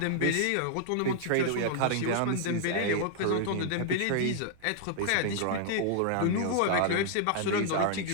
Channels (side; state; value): both; different; correlation -0.01